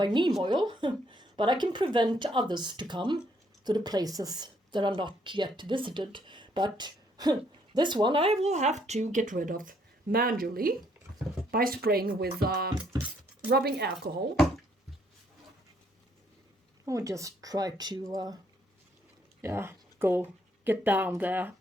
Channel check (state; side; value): normal; both; correlation 0.69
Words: neem oil, but I can prevent others to come to the places that are not yet visited. But this one I will have to get rid of manually by spraying with rubbing alcohol. I'll just try to go get down there